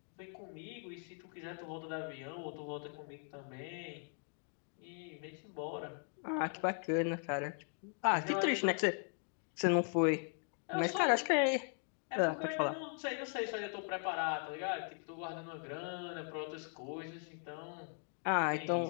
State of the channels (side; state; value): right; silent; 52 dB below the other